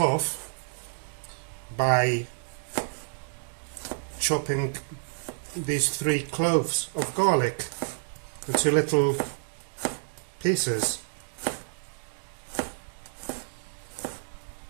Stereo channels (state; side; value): silent; left; digital silence